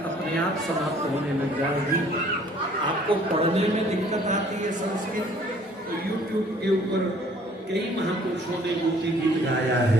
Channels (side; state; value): both; normal; correlation 0.57